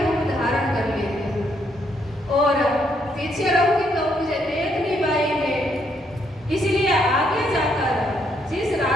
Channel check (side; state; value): both; normal; correlation 0.73